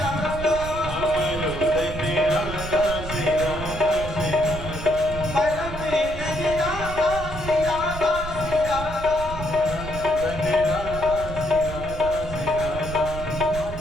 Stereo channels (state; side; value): noise; right; rumble, 9 dB below the sound